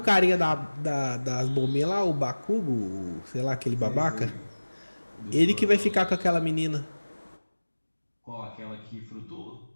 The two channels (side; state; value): both; inverted; correlation -1.00